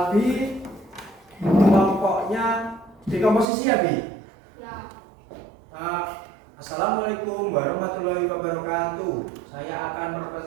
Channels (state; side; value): drops out; left; at 3.5 s